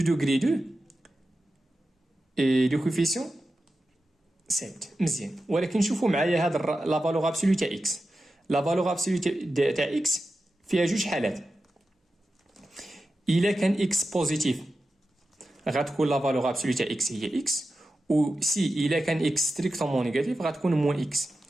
2 اي دو كوفيسيون 7. مزيان. ولكن شوفوا معايا هاد لا فالور ابسولو تاع اكس. لا فالور ابسولو تاع اكس فيها جوج حالات. الا كان اكس بوزيتيف غتكون لا فالور ابسولو تاع اكس هي اكس، و سي الا كان اكس ستريكتومون نيجاتيف غتكون موان اكس.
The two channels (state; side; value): normal; both; correlation 0.92